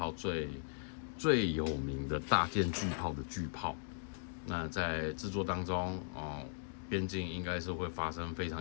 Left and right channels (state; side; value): silent; right; digital silence